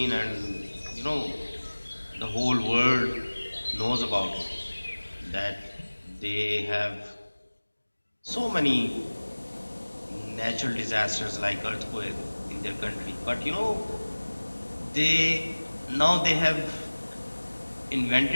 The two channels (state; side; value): inverted; both; correlation -1.00